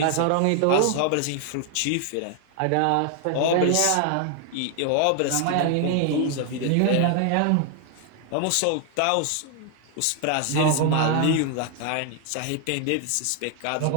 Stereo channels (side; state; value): both; different; correlation 0.00